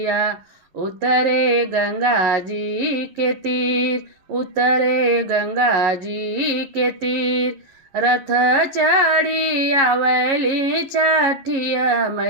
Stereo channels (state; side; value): late; left; 11 ms